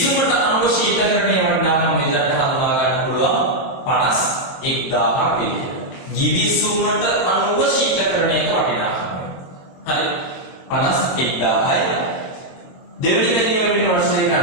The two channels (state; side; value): late; right; 23 ms